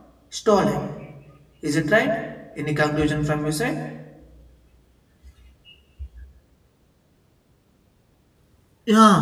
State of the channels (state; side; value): identical; both; correlation 1.00